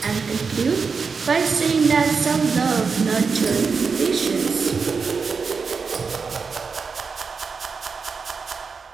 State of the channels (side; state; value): left; quieter; 5.2 dB